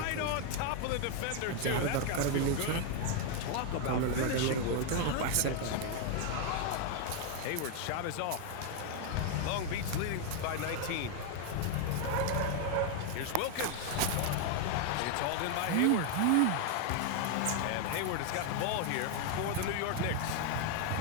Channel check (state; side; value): different; both; correlation 0.00